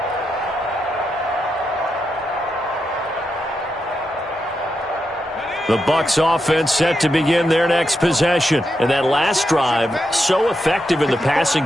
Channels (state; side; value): normal; both; correlation 0.85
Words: The Bucs offense set to begin their next possession. And that last drive, so effective in the passing